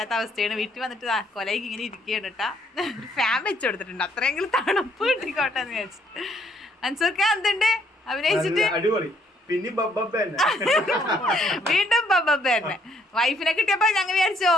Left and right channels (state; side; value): normal; both; correlation 0.68